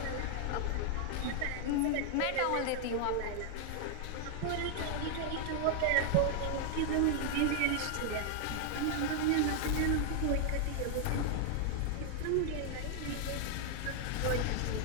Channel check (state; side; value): different; both; correlation 0.00